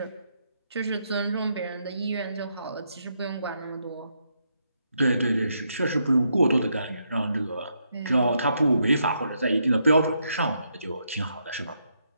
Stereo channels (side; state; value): both; inverted; correlation -0.78